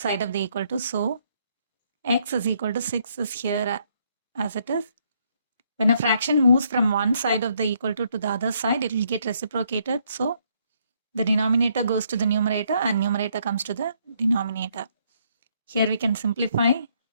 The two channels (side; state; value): both; inverted; correlation -0.70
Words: side of the equal to. So x is equal to 6 is here as it is. When a fraction moves from one side of the equal to the other side, it will get reciprocated. So the denominator goes to the numerator and numerator comes to the denominator. Here we can simplify.